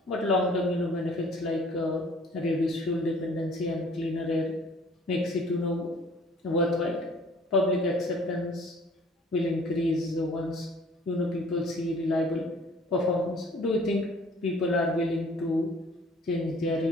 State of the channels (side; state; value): both; normal; correlation 0.54